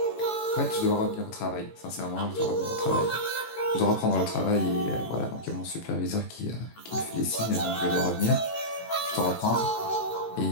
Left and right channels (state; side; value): late; right; 18 ms